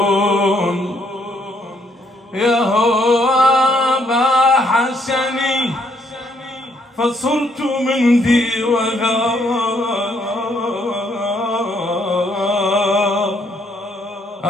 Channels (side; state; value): both; normal; correlation 0.70